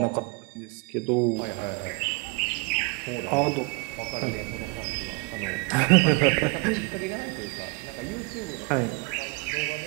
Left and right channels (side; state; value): left; quieter; 29.4 dB